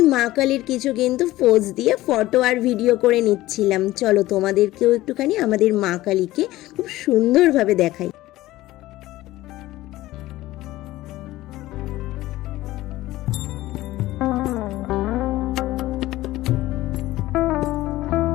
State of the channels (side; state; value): right; quieter; 16.8 dB